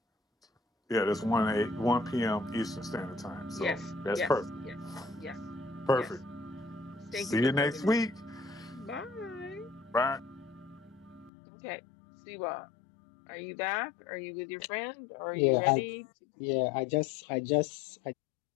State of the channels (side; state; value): right; drops out; at 11.3 s